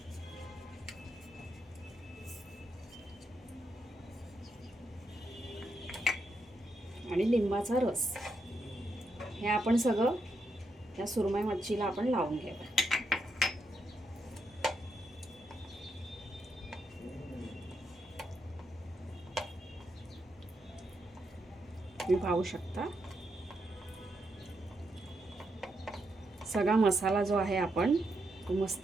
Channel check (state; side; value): normal; both; correlation 0.81